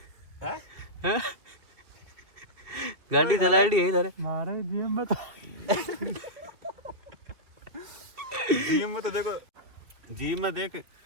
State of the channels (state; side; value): late; left; 2.3 ms